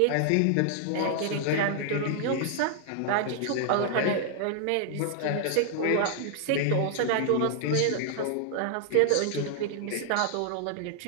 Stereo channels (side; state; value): both; different; correlation 0.00